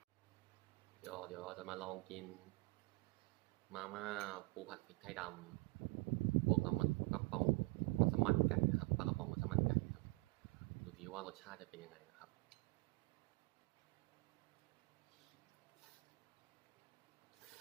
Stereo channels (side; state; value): left; quieter; 25.1 dB